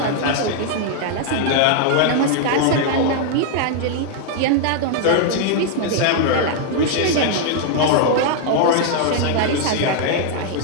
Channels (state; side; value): different; both; correlation 0.00